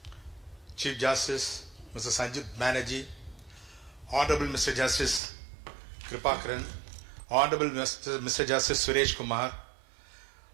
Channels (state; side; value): drops out; left; at 5.2 s